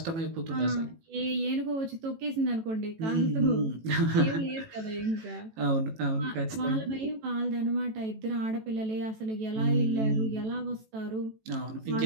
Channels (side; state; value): left; late; 18 ms